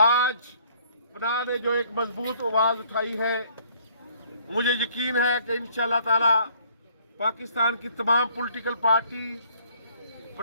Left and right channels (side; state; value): both; inverted; correlation -0.61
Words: पनाह ने जो एक मजबूत आवाज़ उठाई है, मुझे यकीन है कि इंशाअल्लाह ताला पाकिस्तान की तमाम पॉलिटिकल पार्टी